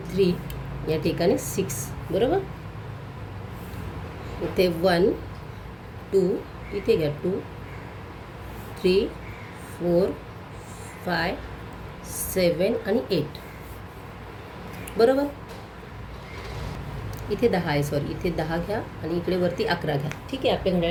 3, या ठिकाणी 6, बरोबर. इथे 1, 2, इथे घ्या 2, 3, 4, 5, 7 आणि 8, बरोबर. इथे 10 आहे, सॉरी इथे 10 घ्या आणि इकडे वरती 11 घ्या, ठीक आहे. आपले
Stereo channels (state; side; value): identical; both; correlation 1.00